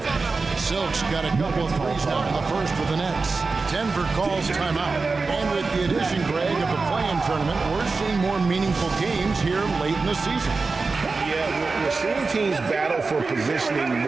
Silk's got a couple of threes now in the first for the Nets. Denver calls timeout. And with the addition, Greg, of the play-in tournament, we're seeing more meaningful games here late in the season. Yeah, we're seeing teams battle for positioning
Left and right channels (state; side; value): quieter; left; 4.1 dB